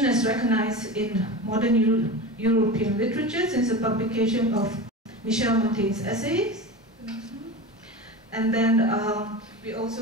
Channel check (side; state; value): both; normal; correlation 0.28